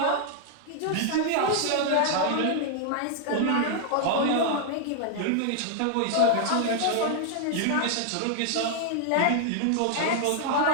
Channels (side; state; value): both; different; correlation 0.00